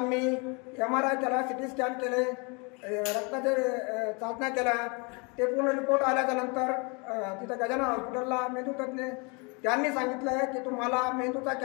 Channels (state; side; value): quieter; right; 31.6 dB